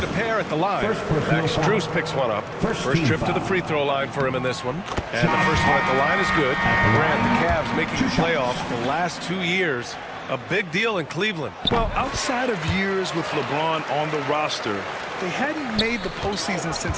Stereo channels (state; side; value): identical; both; correlation 1.00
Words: a pair at the line. Max Strus picks one up. First trip to the free throw line for him in this one. And the first one at the line is good. Grant, the Cavs making the playoffs the last 2 years. A big deal in Cleveland. Well, outside of years with LeBron on the roster, they hadn't made the postseason